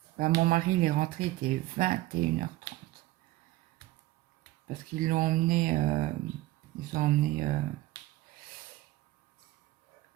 Ben, mon mari, il est rentré, il était 21h30. Parce qu'ils l'ont emmené, ils ont emmené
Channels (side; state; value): left; quieter; 17.4 dB